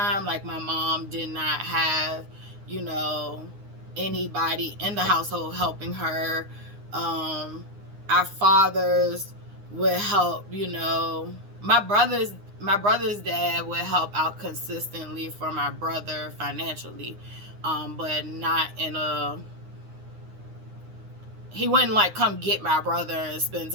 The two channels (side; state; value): left; late; 9.7 ms